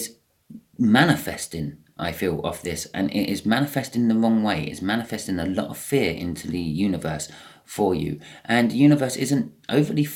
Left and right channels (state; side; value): identical; both; correlation 1.00